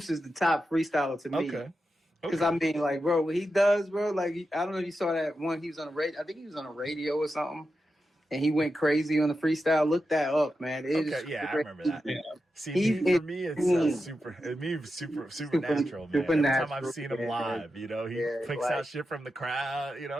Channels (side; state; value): both; normal; correlation 0.89